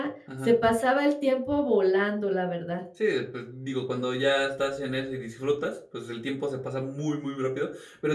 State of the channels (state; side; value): identical; both; correlation 1.00